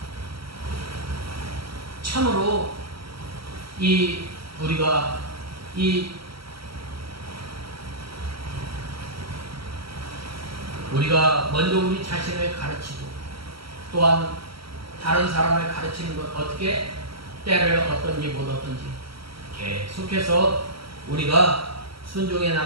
참으로 우리가 먼저 우리 자신을 가르치고 또한 다른 사람을 가르치는 것, 어떻게 때를 얻든지 못 얻든지 계속해서 우리가 순종해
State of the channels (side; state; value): left; late; 0.75 ms